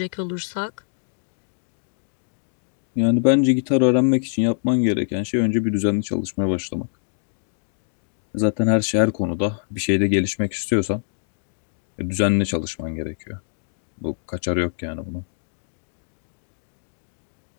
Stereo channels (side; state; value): right; silent; digital silence